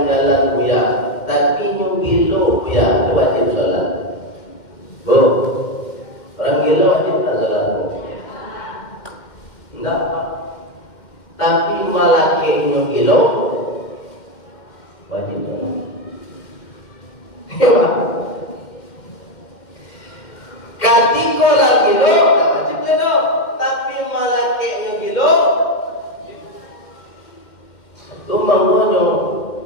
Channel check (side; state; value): right; late; 2.1 ms